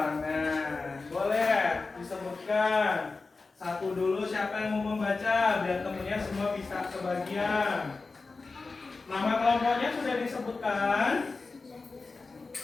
Boleh disebutkan satu dulu, siapa yang mau membaca biar temennya semua bisa kebagian. Nama kelompoknya sudah disebutkan.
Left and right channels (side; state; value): right; quieter; 3.9 dB